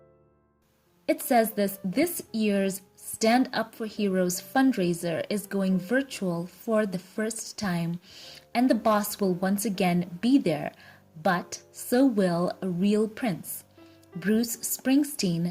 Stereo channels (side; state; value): both; identical; correlation 1.00